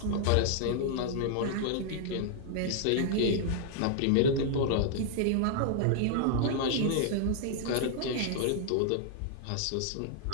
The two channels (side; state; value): both; different; correlation -0.01